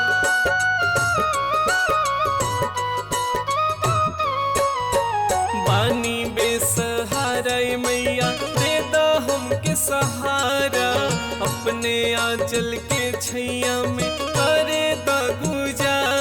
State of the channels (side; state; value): both; identical; correlation 1.00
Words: पानी बेसहारा मैया दे दो हमके सहारा, अपने आंचल के छैया में करे द